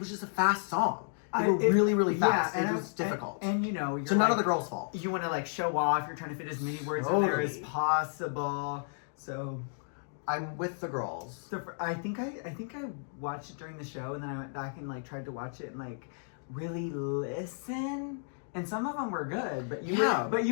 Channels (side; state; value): right; silent; digital silence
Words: just a fast song. They were really, really fast. Yeah, It was difficult. And you know, you're so none like, of the girls' fault. You want to like show off. You're trying to fit as many words in there as Totally. possible. So I'm with the girls. I think I watched it during the show, and then I went back and like tried to watch it and like really listen. And some of them were good, but